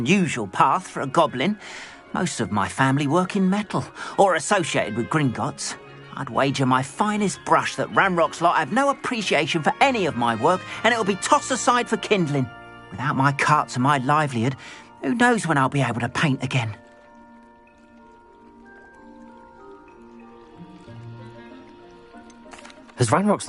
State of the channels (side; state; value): both; identical; correlation 1.00